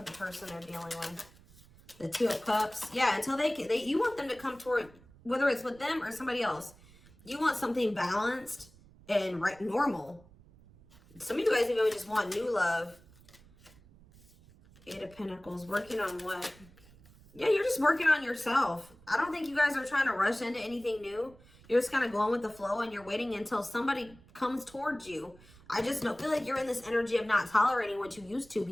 the person they're dealing with? The Two of Cups. Yeah, until you want them to come toward, whether it's with them or somebody else. You want something balanced and normal. Some of you guys even just want new love. Eight of Pentacles. Working on what? Yeah, you're just working on yourself. I don't think you guys are trying to rush into anything new. You're just kind of going with the flow and you're waiting until somebody comes towards you. I just feel like you're in this energy of not tolerating what you used to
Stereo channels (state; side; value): noise; right; rumble, 25 dB below the sound